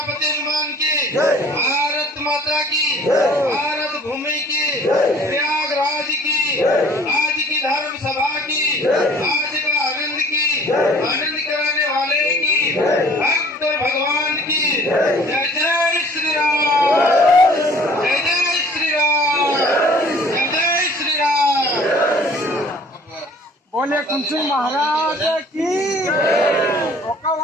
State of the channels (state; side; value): normal; both; correlation 0.52